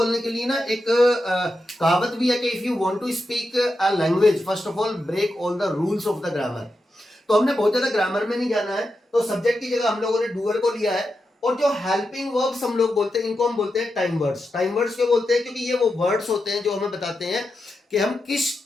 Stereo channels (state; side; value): normal; both; correlation 0.88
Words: के लिए ना एक कहावत भी है कि if you want to speak a language first of all break all the rules of the grammar. तो हमने बहुत ज्यादा ग्रामर में नहीं जाना है, तो सब्जेक्ट की जगह हम लोगों ने डूअर को लिया है। और जो हेल्पिंग वर्ब्स हम लोग बोलते हैं इनको हम बोलते हैं टाइम वर्ड्स। टाइम वर्ड्स क्यों बोलते हैं, क्योंकि ये वो वर्ड्स होते हैं जो हमें बताते हैं कि हम किस